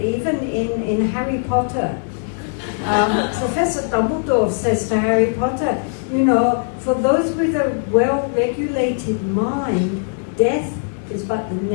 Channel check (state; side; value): silent; right; digital silence